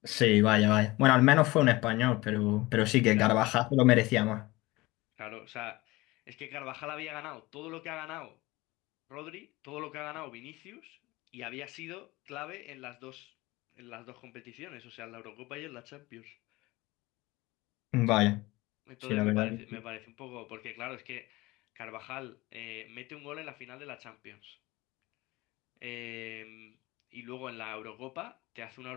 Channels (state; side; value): quieter; right; 20.9 dB